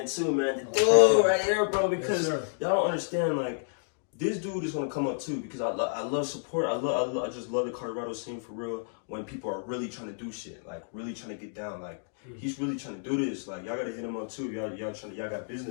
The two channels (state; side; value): silent; right; digital silence